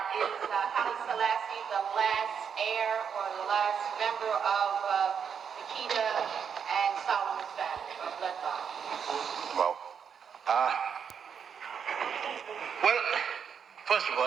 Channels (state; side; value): quieter; left; 7.2 dB